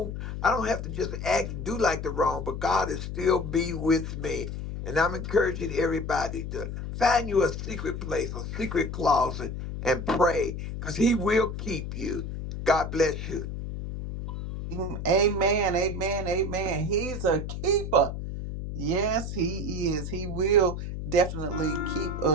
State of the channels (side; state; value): left; noise; hum, 6 dB below the sound